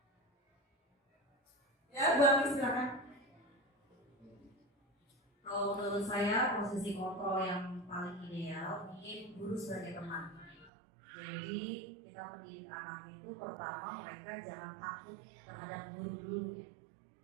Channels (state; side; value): drops out; left; at 10.7 s